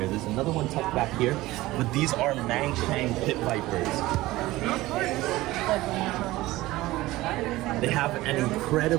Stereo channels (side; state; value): left; quieter; 18.0 dB